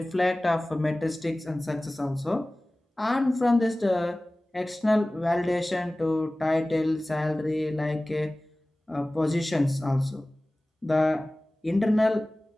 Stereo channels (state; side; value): normal; both; correlation 0.98